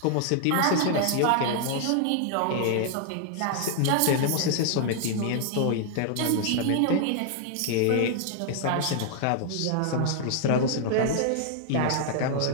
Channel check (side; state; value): both; different; correlation 0.00